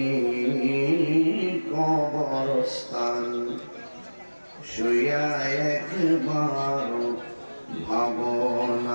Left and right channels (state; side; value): inverted; both; correlation -1.00